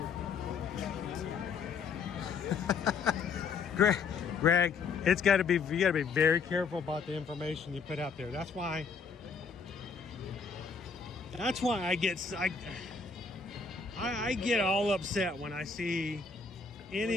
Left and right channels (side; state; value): right; quieter; 5.2 dB